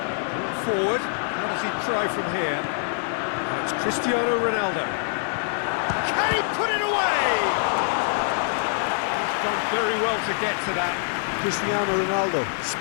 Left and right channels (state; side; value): silent; right; digital silence